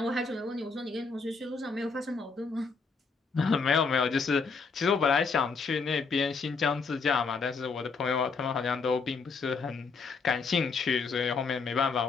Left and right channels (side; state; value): right; quieter; 4.7 dB